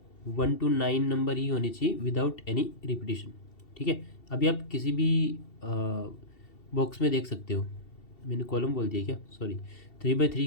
1 to 9 नंबर ही होने चाहिए विदाउट एनी रिपीटेशन। ठीक है, अभी आप किसी भी बॉक्स में देख सकते हो, मैंने कॉलम बोल दिया क्या, सॉरी,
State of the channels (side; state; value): right; late; 2.7 ms